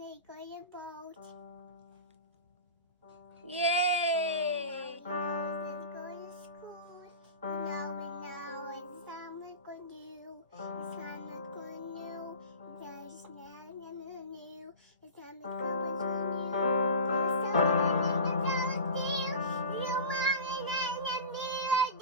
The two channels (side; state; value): both; inverted; correlation -0.32